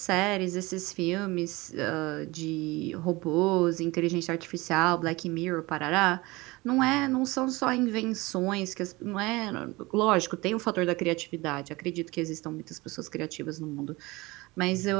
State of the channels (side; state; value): left; quieter; 22.3 dB